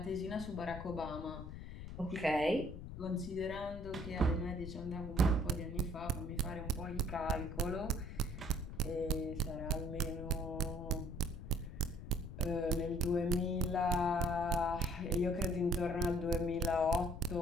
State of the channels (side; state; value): left; noise; rumble, 10 dB below the sound